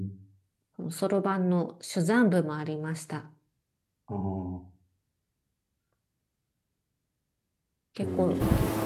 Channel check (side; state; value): both; identical; correlation 1.00